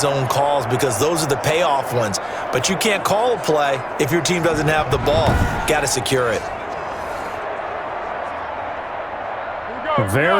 calls because those are the payoff ones. But you can't call a play if your team doesn't have the ball. Got to secure it.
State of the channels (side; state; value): both; identical; correlation 1.00